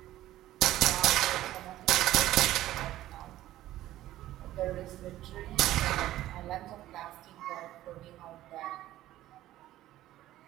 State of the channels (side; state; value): left; quieter; 14.5 dB